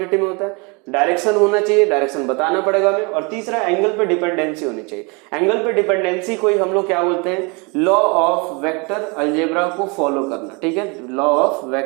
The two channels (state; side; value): quieter; left; 30.5 dB